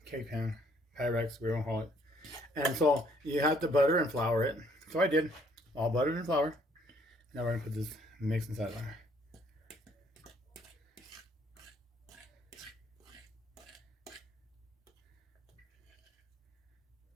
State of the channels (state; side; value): normal; both; correlation 0.64